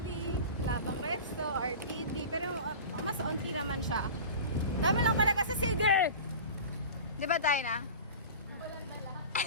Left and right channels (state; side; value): inverted; both; correlation -0.34